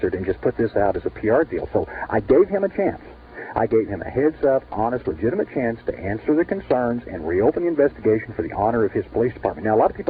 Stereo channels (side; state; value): both; identical; correlation 1.00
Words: and just put this out as a PR deal. So I gave him a chance. I gave him a heads-up, honest, legitimate chance to answer the concerns and reopen the investigation for the honor of his police department. Now, a lot of